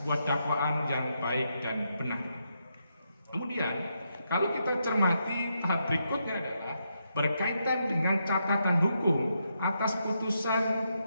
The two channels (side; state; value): both; inverted; correlation -0.81